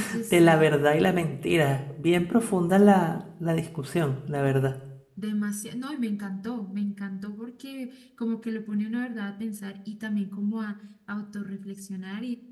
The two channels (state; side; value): identical; both; correlation 1.00